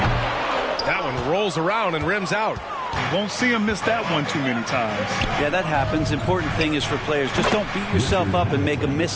That one rolls around and rims out. You won't see him miss that one too many times. Yeah, that happens. Important thing is for players, just don't beat yourself up and make a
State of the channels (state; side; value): identical; both; correlation 1.00